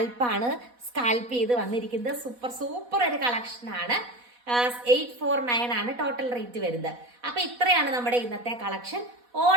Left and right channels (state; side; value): late; left; 4.1 ms